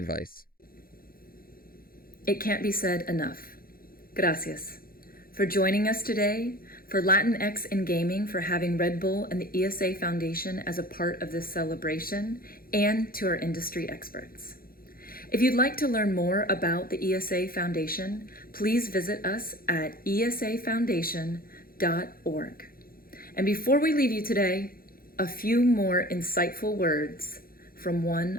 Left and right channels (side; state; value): right; late; 0.42 ms